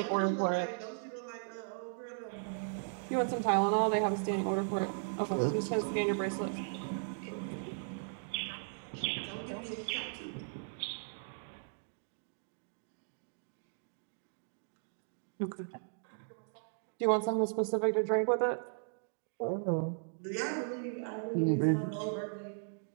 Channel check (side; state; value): left; silent; digital silence